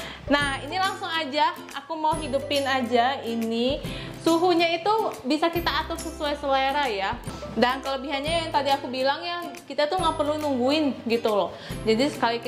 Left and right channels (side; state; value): both; identical; correlation 1.00